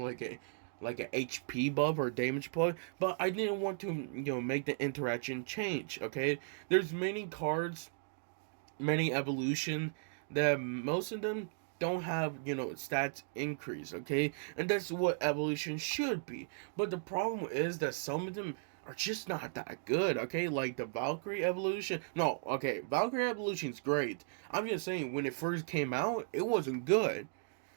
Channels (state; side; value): silent; left; digital silence